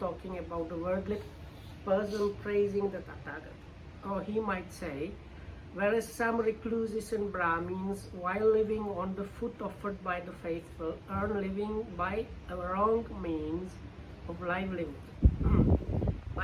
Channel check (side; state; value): both; identical; correlation 1.00